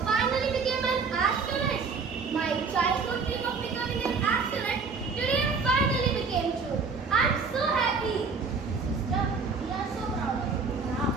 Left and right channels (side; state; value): left; quieter; 4.9 dB